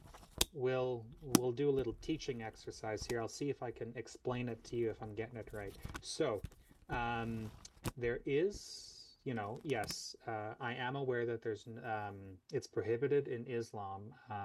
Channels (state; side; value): identical; both; correlation 1.00